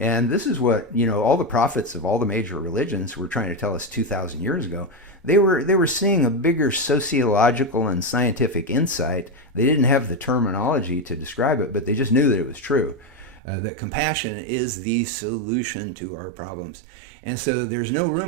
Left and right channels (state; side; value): drops out; left; at 13.4 s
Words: this is what, all the prophets of all the major religions were trying to tell us 2,000 years ago. They were seeing a bigger sociological and scientific insight. They didn't have the terminology to describe it, but they just knew that it was true, that compassion is the solution to our problems. And so there's no